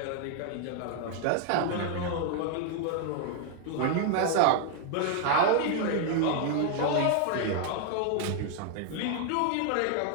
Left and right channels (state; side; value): different; both; correlation 0.00